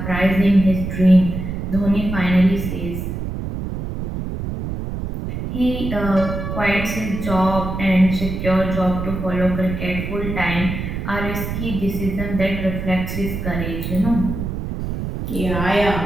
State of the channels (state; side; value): noise; right; rumble, 5 dB below the sound